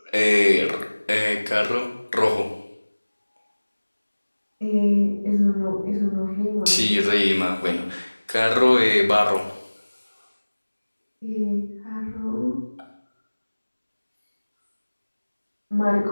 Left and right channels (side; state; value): both; inverted; correlation -1.00